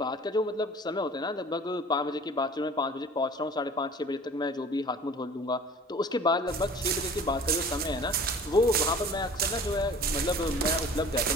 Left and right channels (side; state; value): both; normal; correlation 0.45